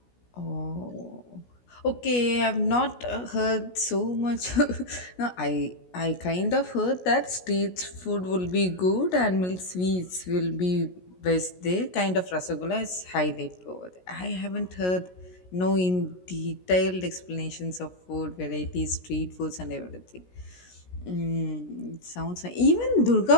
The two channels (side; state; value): right; late; 16 ms